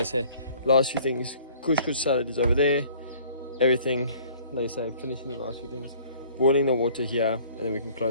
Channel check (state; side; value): inverted; both; correlation -0.54